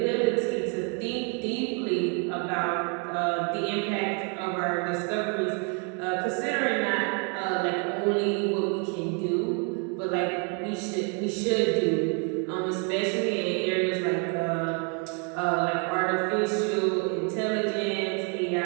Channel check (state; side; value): quieter; left; 37.6 dB